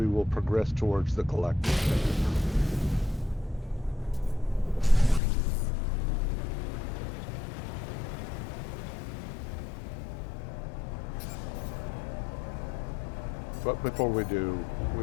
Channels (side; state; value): right; drops out; at 5.2 s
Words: will progress towards the collective. But before we do,